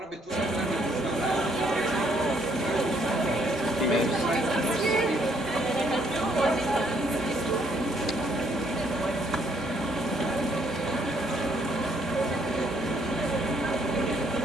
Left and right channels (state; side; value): normal; both; correlation 0.68